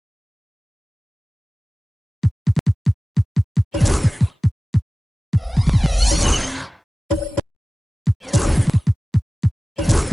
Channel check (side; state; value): both; normal; correlation 0.97